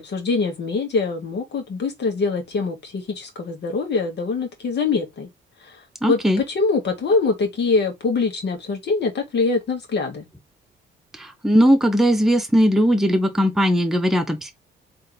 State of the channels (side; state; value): both; normal; correlation 0.55